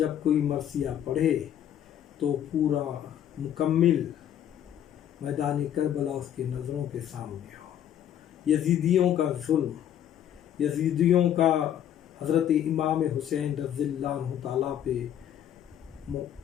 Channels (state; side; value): quieter; right; 10.3 dB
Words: کوئی مرثیہ پڑھے تو پورا مکمل میدان کربلا اس کے نظروں کے سامنے ہو. یزیدیوں کا ظلم، یزیدیوں کا حضرت امام حسین رضی اللہ عنہ تعالیٰ پہ